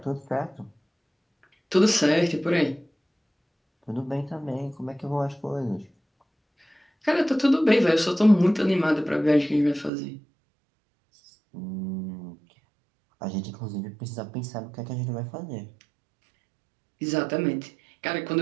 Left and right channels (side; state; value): left; drops out; at 9.9 s